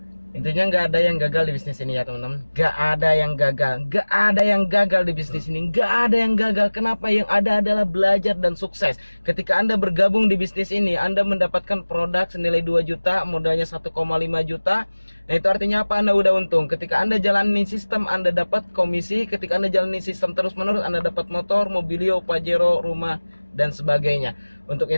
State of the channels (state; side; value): inverted; both; correlation -1.00